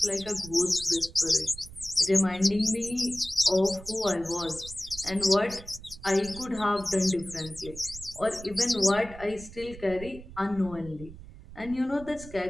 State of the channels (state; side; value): noise; right; rumble, 16 dB below the sound